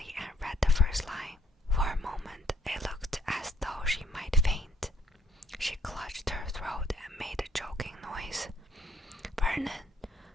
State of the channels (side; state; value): both; normal; correlation 0.67